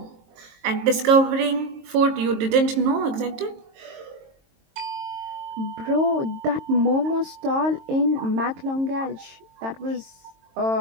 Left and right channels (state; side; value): late; left; 22 ms